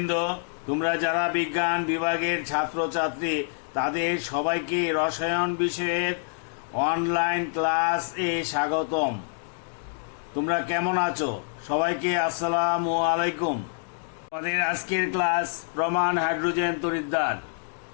তোমরা যারা বিজ্ঞান বিভাগের ছাত্রছাত্রী তাদের সবাইকে রসায়ন বিষয়ের অনলাইন ক্লাস এ স্বাগতম। তোমরা কেমন আছো? সবাইকে আসসালামু আলাইকুম। তোমাদের আজকের ক্লাস প্রমাণ হাইড্রোজেন তড়িৎদ্বার।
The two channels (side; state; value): right; silent; digital silence